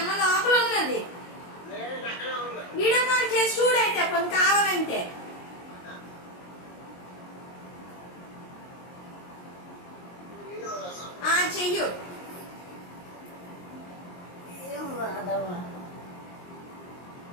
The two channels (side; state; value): right; late; 22 ms